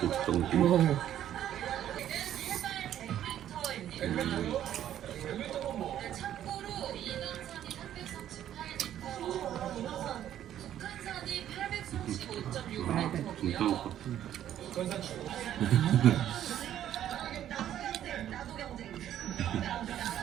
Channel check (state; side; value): quieter; left; 11.2 dB